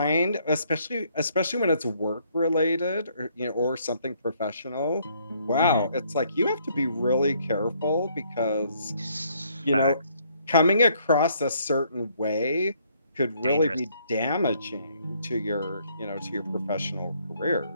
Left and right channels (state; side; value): inverted; both; correlation -0.67